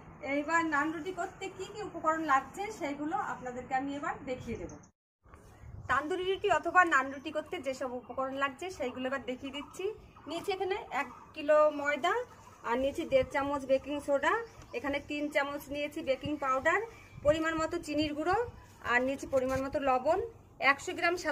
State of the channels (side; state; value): both; identical; correlation 1.00